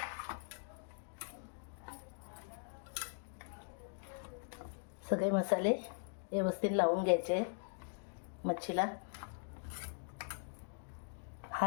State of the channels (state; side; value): silent; right; digital silence